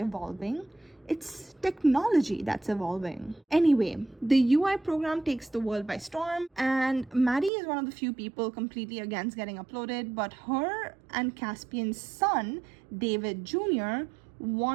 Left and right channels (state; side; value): drops out; left; at 7.5 s